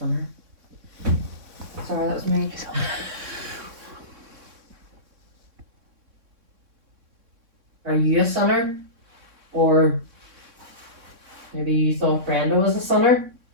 Sorry, that was me. Are you a sinner? Or maybe you thought Brenda was a sinner?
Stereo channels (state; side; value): late; left; 3.6 ms